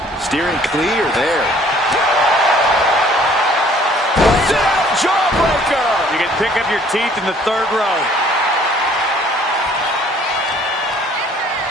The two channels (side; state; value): both; normal; correlation 0.57